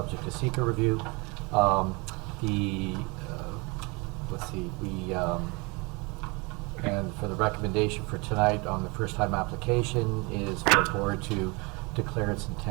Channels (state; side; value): quieter; left; 28.1 dB